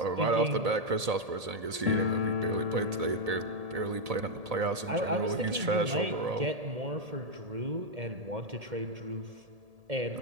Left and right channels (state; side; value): late; left; 1.8 ms